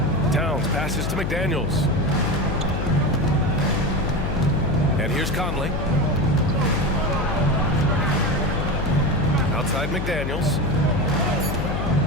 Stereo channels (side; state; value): left; noise; hum, 3 dB below the sound